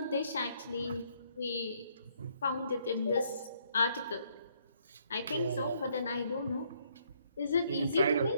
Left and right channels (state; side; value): inverted; both; correlation -0.69